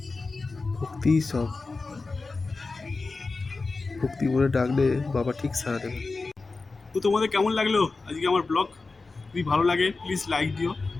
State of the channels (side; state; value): right; quieter; 3.8 dB